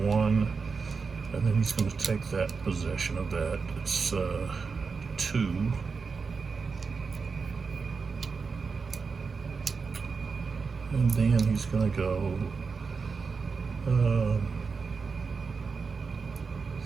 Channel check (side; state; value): left; quieter; 5.0 dB